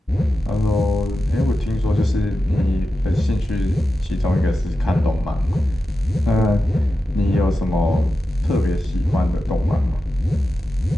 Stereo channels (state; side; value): normal; both; correlation 0.91